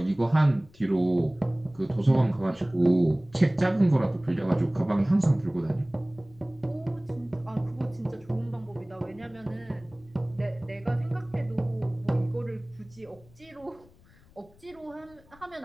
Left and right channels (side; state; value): left; noise; rumble, 27 dB below the sound